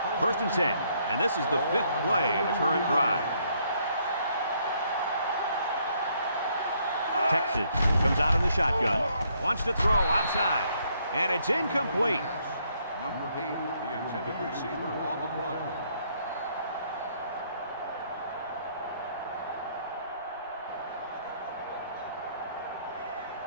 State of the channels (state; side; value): inverted; both; correlation -0.70